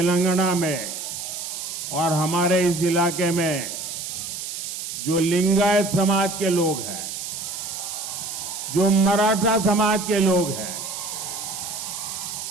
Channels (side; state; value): right; noise; hiss, 6 dB below the sound